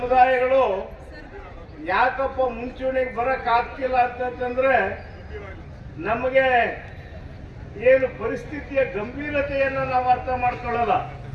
ಯಾಕಪ್ಪ ಮುಂಚೂಣಿಗೆ ಬರಕ್ ಆಗ್ತಿಲ್ಲ ಅಂತಂದ್ರೆ ನಮಗೆ ಏನು ಪರಿಸ್ಥಿತಿಯ ಗಂಭೀರತೆಯನ್ನು ನಾವು ಅರ್ಥ ಮಾಡ್ಕೊಳ್ಳಲ್ಲ.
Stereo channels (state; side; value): identical; both; correlation 1.00